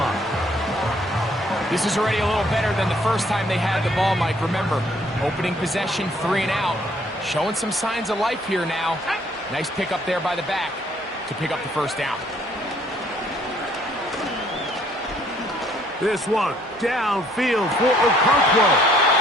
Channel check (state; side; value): normal; both; correlation 0.64